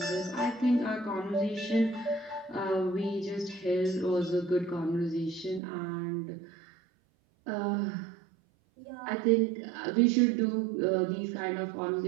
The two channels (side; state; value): left; drops out; at 5.6 s